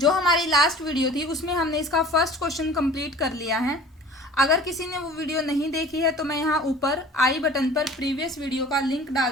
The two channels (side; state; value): both; normal; correlation 0.45